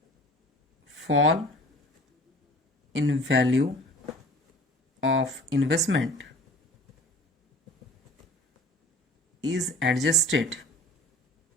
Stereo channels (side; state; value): both; normal; correlation 0.45